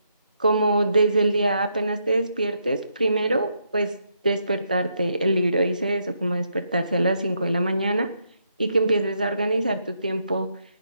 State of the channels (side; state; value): both; inverted; correlation -0.78